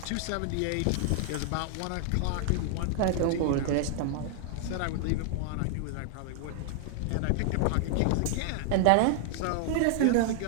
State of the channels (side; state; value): both; different; correlation 0.00